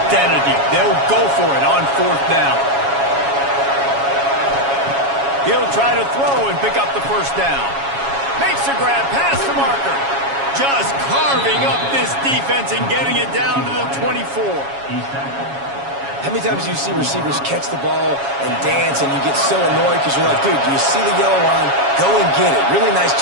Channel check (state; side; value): late; left; 7.2 ms